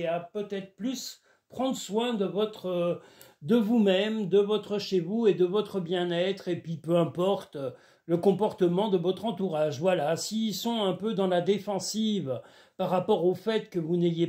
à peut-être plus prendre soin de vous-même, de votre chez vous et de votre bien-être, et puis peu importe le comportement de votre entourage. Voilà, s'ils sont un peu dans la défensive par rapport au fait que vous n'ayez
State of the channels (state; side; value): identical; both; correlation 1.00